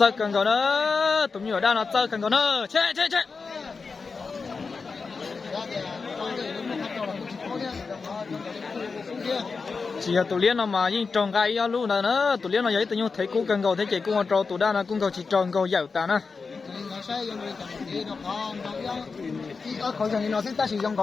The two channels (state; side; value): quieter; right; 4.7 dB